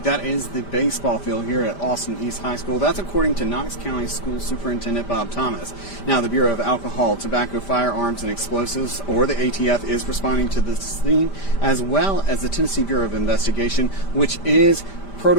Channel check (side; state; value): right; late; 5.1 ms